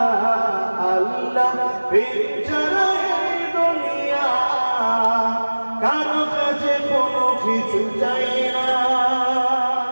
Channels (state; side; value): inverted; both; correlation -1.00